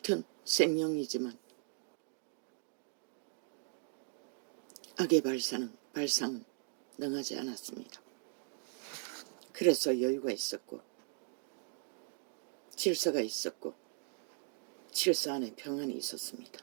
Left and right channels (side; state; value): left; silent; 52 dB below the other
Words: 생명이지만 악의 발상은 능하지 않았습니다. 그래서 여유가 있었고 질서가 있었고 질서 안에 평안이